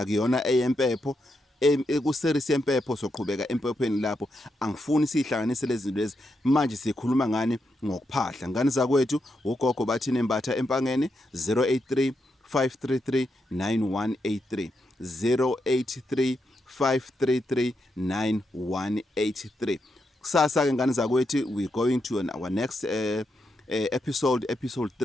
eyempepho. Ku-series yempepho soqhubeka empephweni lapho. Angifuni sihlanganise lezi zinto lezi. Manje sikhuluma ngani ngokuphahla. Ngani zakwethu, uGogo Bathini Mbatha empangeni 083 533 9183 083 533 9183. Kusasa ke ngani zakwethu, we going to our next episode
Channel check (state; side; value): normal; both; correlation 0.83